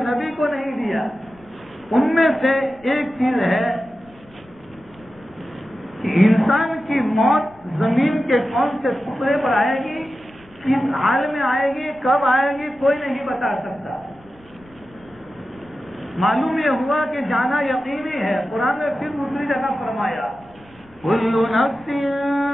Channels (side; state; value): left; noise; rumble, 27 dB below the sound